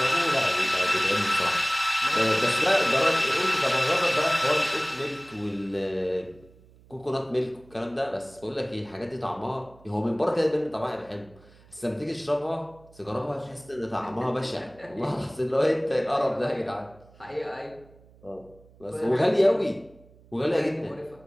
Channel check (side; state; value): right; noise; hum, 26 dB below the sound